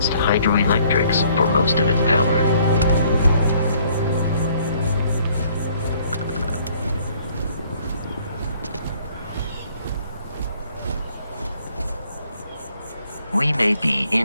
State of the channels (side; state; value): both; inverted; correlation -0.62